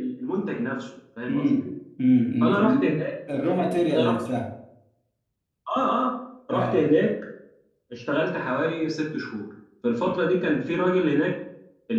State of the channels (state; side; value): identical; both; correlation 1.00